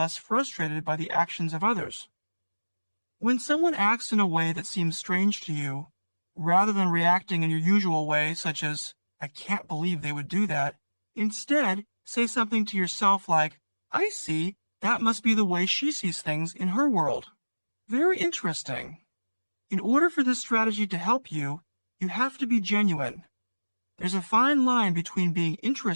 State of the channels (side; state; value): both; inverted; correlation -1.00